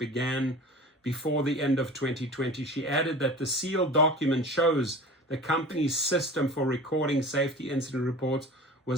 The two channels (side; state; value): both; normal; correlation 0.38